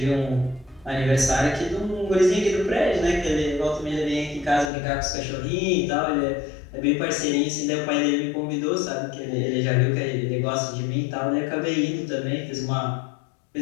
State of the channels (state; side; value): drops out; right; at 4.7 s